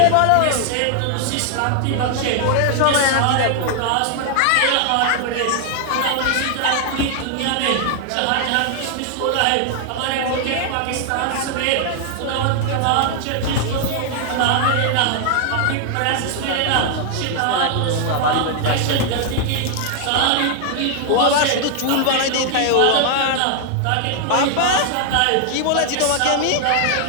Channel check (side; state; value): both; different; correlation 0.00